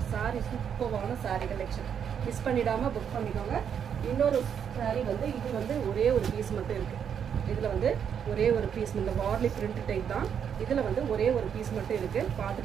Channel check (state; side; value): quieter; left; 8.0 dB